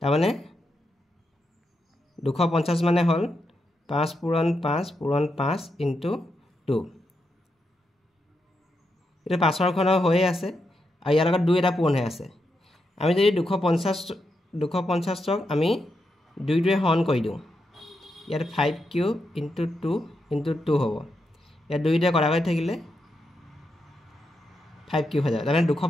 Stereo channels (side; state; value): both; normal; correlation 0.84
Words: মানে 250 মানে হল 5 পূৰণ 5 পূৰণ 5 ইনটু 2 এটা 5 ৰ ঘন হৈ আছে আৰু ইয়াৰ লগত 2 এটা পূৰণ হৈ আছে আমি যদি 250 ক আমি 2 ৰে হৰণ কৰি দিওঁ ইয়াত 5 কিউব ইনটু 2 ইনটু 2 হ'ব ইয়াত 2 ৰে কৰা হৈ থাকিলে 5 কিউব হৈ যায় মানে